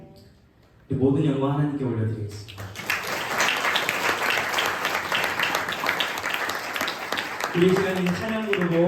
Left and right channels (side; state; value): both; identical; correlation 1.00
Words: 모든 영광 하나님께 올려드리겠습니다. 우리 시간에 찬양